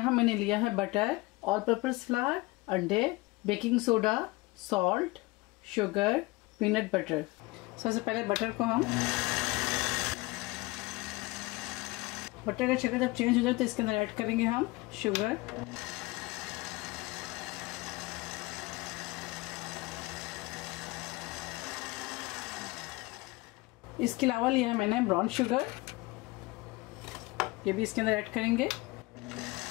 मैंने लिया है बटर, ऑल पर्पस फ्लावर, अंडे, baking soda, salt, sugar, peanut butter. सबसे पहले बटर को हम बटर का शक्कर जब चेंज हो जाए तो इसके अंदर ऐड करेंगे हम शुगर, इसके अलावा लिया है मैंने ब्राउन शुगर, ये भी इसके अंदर ऐड करेंगे।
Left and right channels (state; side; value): quieter; right; 22.3 dB